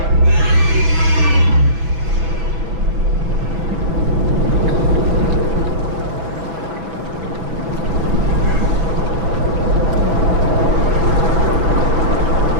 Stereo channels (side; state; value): left; late; 6.0 ms